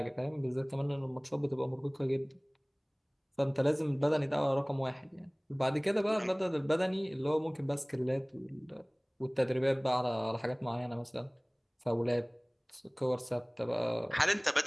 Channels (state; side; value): identical; both; correlation 1.00